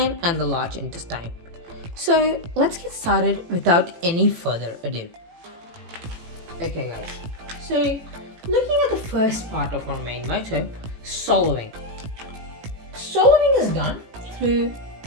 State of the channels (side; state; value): left; late; 18 ms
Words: and the large intestine. So let's get started without any further ado. Okay guys, so looking at the first part of our main motto, swallowing. Swallowing is done through